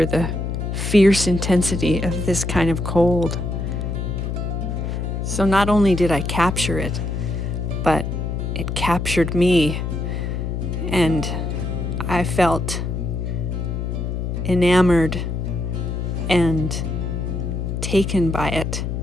the fierce intensity of this kind of cold. So not only did I capture it, but it captured me, and I felt enamored and taken by it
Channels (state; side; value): noise; left; hum, 2 dB below the sound